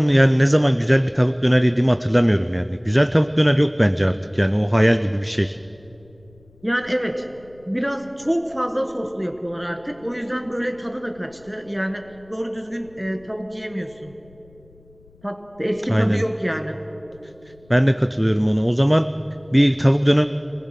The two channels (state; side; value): noise; left; rumble, 29 dB below the sound